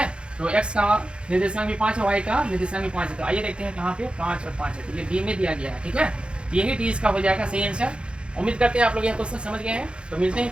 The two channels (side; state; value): left; late; 0.056 ms